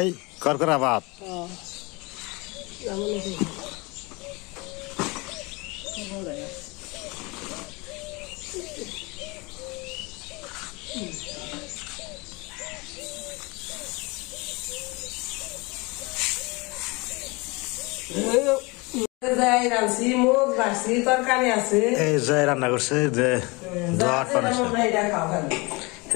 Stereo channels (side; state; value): right; quieter; 26.2 dB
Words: করকরা ভাত যাই রাঁধছি মুখ ভাবছি তরকারি আছে এই জয় রান্না করছে যে দোয়ার